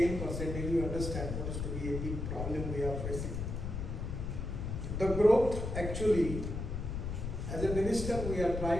you understand what is to be a big problem we are facing. The growth actually, as a minister, we are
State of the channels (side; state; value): left; noise; rumble, 4 dB below the sound